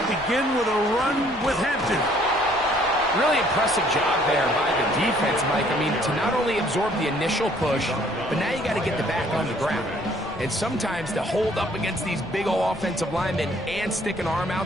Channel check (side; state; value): left; noise; rumble, 20 dB below the sound